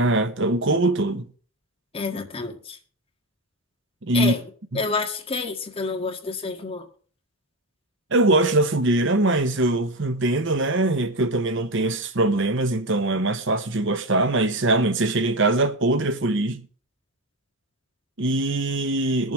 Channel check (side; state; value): both; normal; correlation 0.16